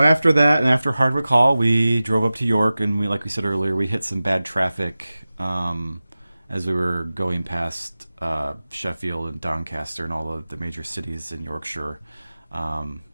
that, and after Hardwick Hall, we drove up to York, and like we said earlier, we hit some bad traffic as we were going past Sheffield and Doncaster and all the major cities in Yorkshire.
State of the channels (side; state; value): both; inverted; correlation -0.96